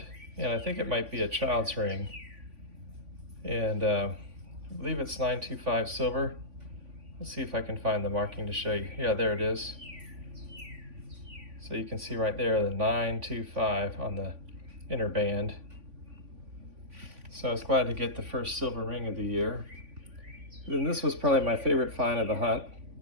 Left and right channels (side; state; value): left; late; 3.5 ms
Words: and I think it might be a child's ring. And I believe it's 925 silver. Let's see if I can find the marking to show you. Yeah, there it is. So you can see right there the 925 on the inner band. So I was glad to get the first silver ring of the year. Then this was probably my favorite find of the hunt.